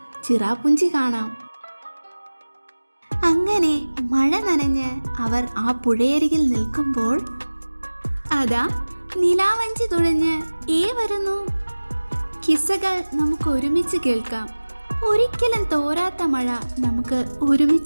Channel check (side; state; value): both; inverted; correlation -1.00